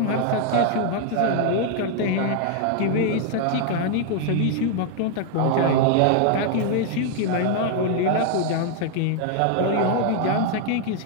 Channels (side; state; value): both; different; correlation 0.00